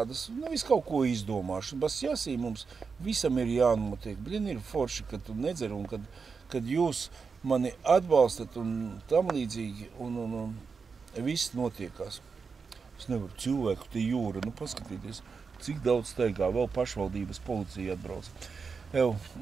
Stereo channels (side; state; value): left; quieter; 5.2 dB